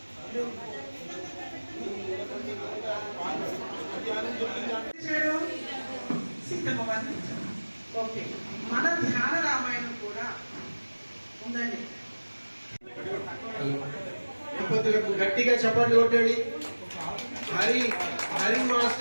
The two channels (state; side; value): inverted; both; correlation -1.00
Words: Okay, మన ధ్యాన రామాయణం కూడా ఉందండి. దంపతులకు గట్టిగా చప్పట్లు కొట్టండి. హరి